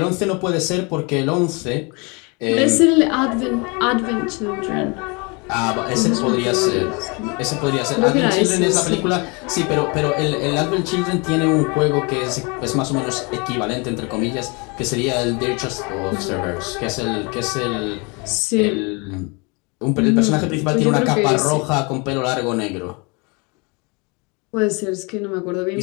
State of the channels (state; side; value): quieter; right; 30.2 dB